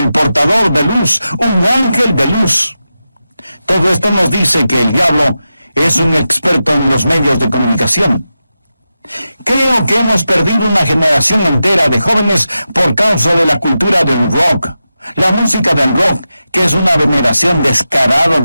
portador de luz, un ángel de luz. Todo esto nos dice que el diablo es un experto en los medios de comunicación. Creo que hemos perdido una generación entera de jóvenes por causa de la cultura del rock. La música del rock, que es una veneración descarada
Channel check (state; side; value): inverted; both; correlation -0.91